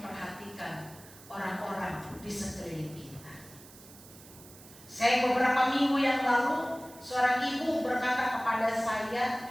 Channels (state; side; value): noise; right; hiss, 20 dB below the sound